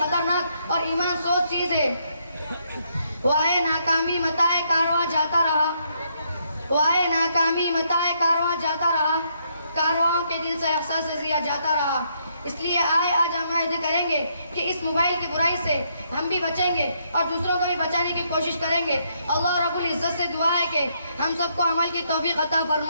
اور ایمان سوز چیز ہے۔ وائے ناکامی متائے کارواں جاتا رہا، وائے ناکامی متائے کارواں جاتا رہا، کارواں کے دل سے احساس ضیا جاتا رہا۔ اس لیے آج ہم عہد کریں گے کہ اس موبائل کی برائی سے ہم بھی بچیں گے اور دوسروں کو بھی بچانے کی کوشش کریں گے۔ اللہ رب العزت سے دعا ہے کہ ہم سب کو عمل کی توفیق عطا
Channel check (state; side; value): inverted; both; correlation -0.74